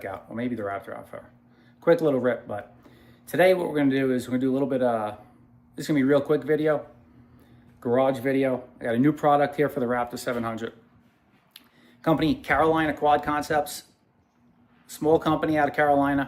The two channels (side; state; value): both; identical; correlation 1.00